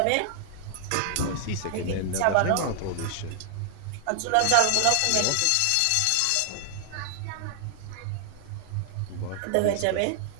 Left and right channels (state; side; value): different; both; correlation 0.00